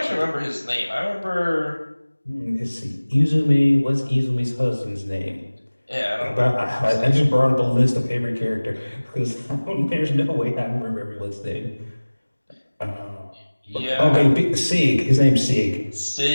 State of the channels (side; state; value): both; inverted; correlation -1.00